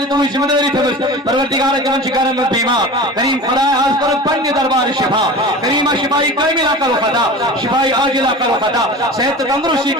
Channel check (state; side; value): normal; both; correlation 0.35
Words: تو ذمہ داری تھمس پروردگار کرم شکارن میں بیمار کریم خدای آج کر پنی دربار شفا کریم شفائی کاملہ کرو خدا شفائی عاجلہ کرو خدا صحت تندرستی